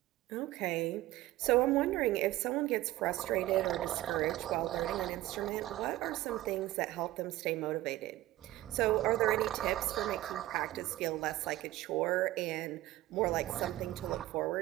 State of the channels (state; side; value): quieter; left; 16.2 dB